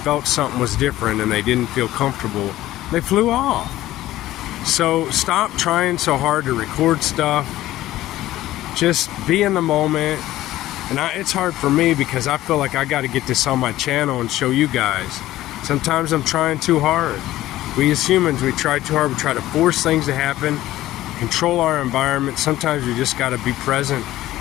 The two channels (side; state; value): right; quieter; 15.2 dB